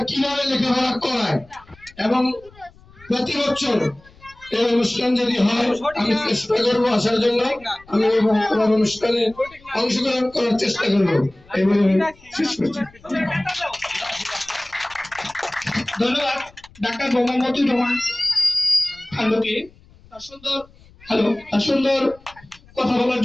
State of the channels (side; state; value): left; noise; rumble, 26 dB below the sound